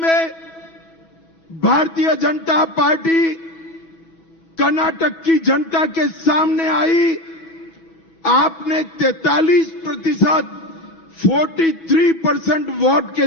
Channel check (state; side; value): late; right; 6.1 ms